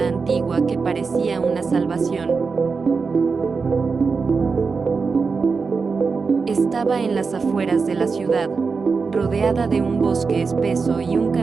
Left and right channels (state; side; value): quieter; left; 4.8 dB